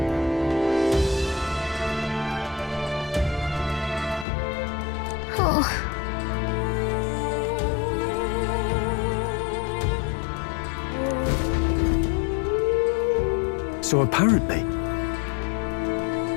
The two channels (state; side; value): drops out; right; at 4.2 s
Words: Oh. So apparently...